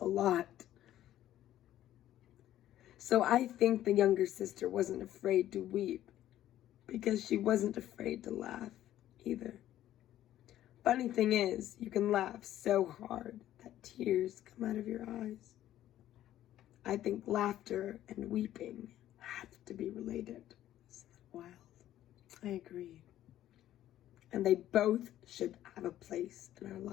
lot. So I think the younger sister wasn't afraid to weep because she wasn't afraid to laugh either. Funny thing is, you can laugh so hard that tears come out of your eyes. I think laughter and weeping have to be related. Isn't that wild? I agree. And they both should have a place in our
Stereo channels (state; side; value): quieter; right; 12.8 dB